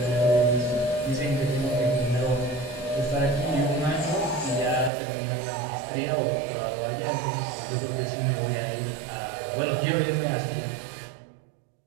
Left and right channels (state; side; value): drops out; left; at 4.9 s